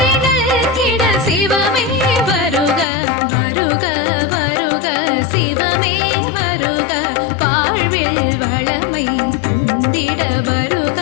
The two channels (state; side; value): drops out; right; at 2.9 s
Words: கிட சிவமே வருக வருக வருக, சிவமே வருக, வாழ்வில் வளமை தந்திட வருக